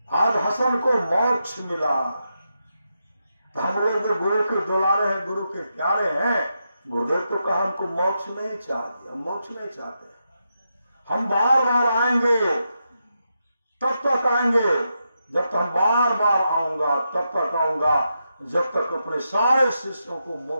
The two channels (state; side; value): inverted; both; correlation -0.85